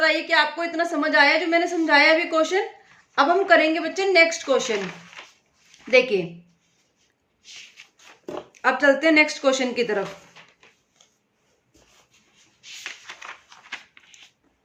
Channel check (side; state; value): both; identical; correlation 1.00